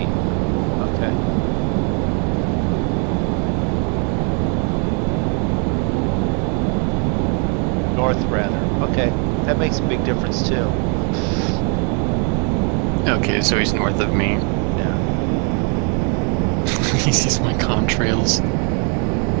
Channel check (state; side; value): quieter; left; 38.6 dB